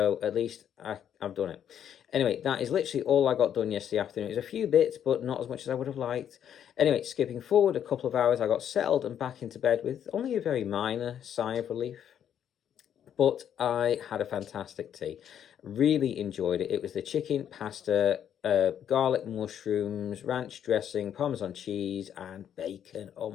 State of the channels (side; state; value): right; quieter; 9.4 dB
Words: at least I've done it. Anyway, that is literally all I got done yesterday afternoon. It was a few bits, but not as much as I would have liked. Anyway, skipping forward a couple of hours, I got settled and back into bed with only a very minor sigh of relief. But I had a fantastic tea. Really enjoyed it. It was the chicken, pasta, garlic mushrooms, ranch dressing, Parmesan cheese, and bacon. Oh